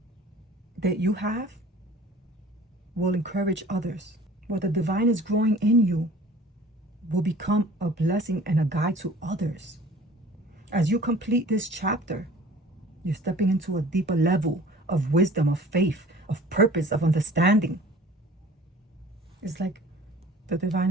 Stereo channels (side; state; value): both; normal; correlation 0.47